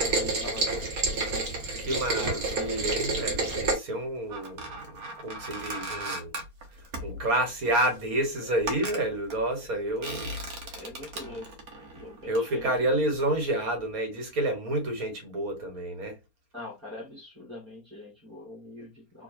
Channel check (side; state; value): left; late; 4.3 ms